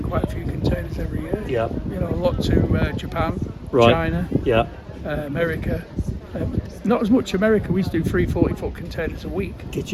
quite a few containers every year. Yeah. You know, a lot to Japan, Right. China, Yeah. America. Not as much America. We used to do 3 40-foot containers a week, Did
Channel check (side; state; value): both; identical; correlation 1.00